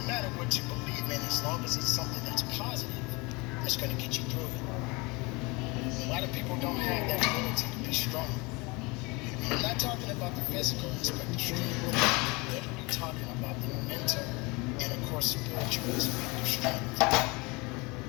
matter what you believe in as long as it's something that's positive that's going to get you through it. A lot of people don't have that ability to be strong. I'm not talking about the physical aspect of strength. I'm literally talking about the mental and, of course, spiritual aspect of strength.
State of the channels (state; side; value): quieter; right; 26.3 dB